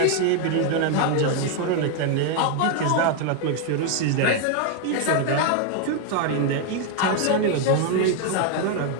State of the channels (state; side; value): different; both; correlation 0.01